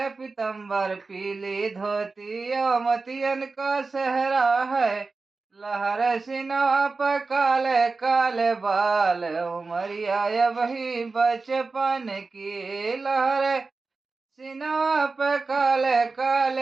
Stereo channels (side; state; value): left; quieter; 4.0 dB